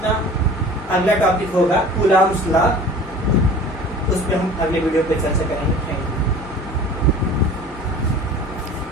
अगला टॉपिक होगा कूलॉम्स लॉ, उस पर हम अगले वीडियो पे चर्चा करेंगे।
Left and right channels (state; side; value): normal; both; correlation 0.43